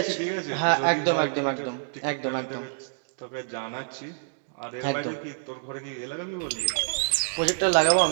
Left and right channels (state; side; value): silent; left; digital silence